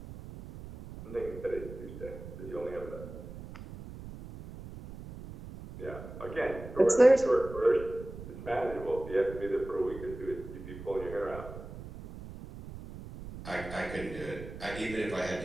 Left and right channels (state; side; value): noise; right; rumble, 12 dB below the sound